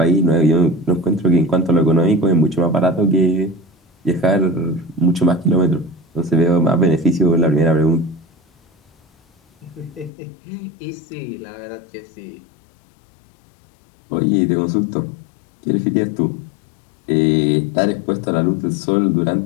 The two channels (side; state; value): right; drops out; at 10.1 s